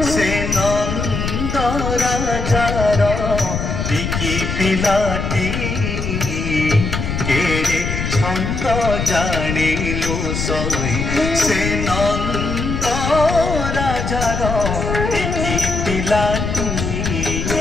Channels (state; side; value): noise; left; rumble, 3 dB below the sound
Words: से नंद राजार टिकी पिलाटी केड़े छंद जानिलु सही से नंद राजार टिकी पिलाटी